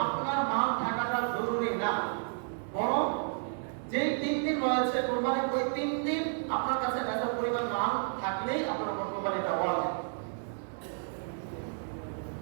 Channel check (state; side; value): silent; left; digital silence